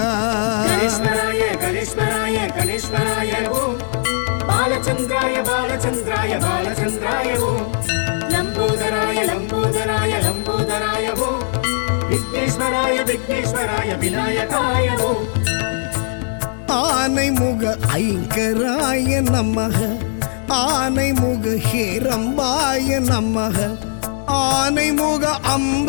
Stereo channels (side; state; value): right; silent; digital silence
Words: ಗಣೇಶ್ವರಾಯ ಗಣೇಶ್ವರಾಯ ಗಣೇಶ್ವರಾಯ ಓಂ ಬಾಲಚಂದ್ರಾಯ ಬಾಲಚಂದ್ರಾಯ ಬಾಲಚಂದ್ರಾಯ ಓಂ ಲಂಬೋದರಾಯ ಲಂಬೋದರಾಯ ಲಂಬೋದರಾಯ ಓಂ ವಿಘ್ನೇಶ್ವರಾಯ ವಿಘ್ನೇಶ್ವರಾಯ ವಿನಾಯಕಾಯ ಓಂ ஆனைமுக ஐங்கராய நமக ஆனைமுக ஹேரம்பாய நமக ஆனைமுக